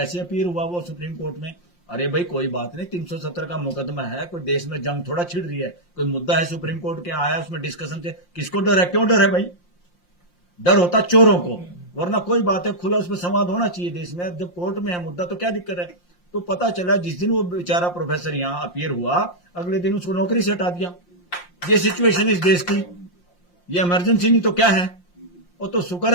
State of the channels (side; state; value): right; late; 5.7 ms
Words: अपीयर हुआ वो सुप्रीम कोर्ट में। अरे भाई कोई बात नहीं, 370 का मुकदमा है, कोई देश में जंग थोड़ा छिड़ रही है, कोई मुद्दा है सुप्रीम कोर्ट के आया, उसमें डिस्कशन से किसको डर है? क्यों डर है भाई? डर होता चोरों को, वरना कोई बात है, खुला उसमें संवाद होना चाहिए देश में। जब कोर्ट में है मुद्दा तो क्या दिक्कत है? तो पता चला जिस दिन वो बेचारा प्रोफेसर यहां अपीयर हुआ, अगले दिन उसको नौकरी से हटा दिया। ये सिचुएशन इस देश की, ये इमरजेंसी नहीं तो क्या है? वो तो शुक्र